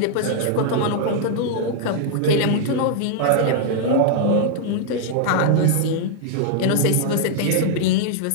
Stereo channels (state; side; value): different; both; correlation -0.01